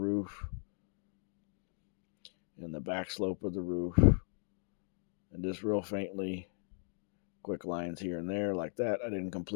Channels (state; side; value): silent; right; digital silence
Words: and the back slope of the roof. And just real faintly, quick lines here and there like that. I didn't